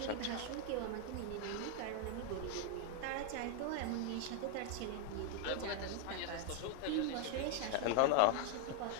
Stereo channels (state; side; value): different; both; correlation 0.00